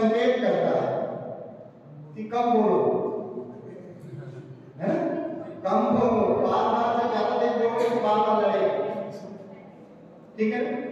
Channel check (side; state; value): both; identical; correlation 1.00